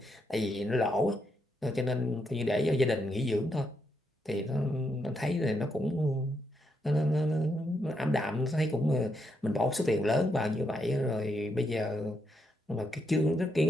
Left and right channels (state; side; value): normal; both; correlation 0.79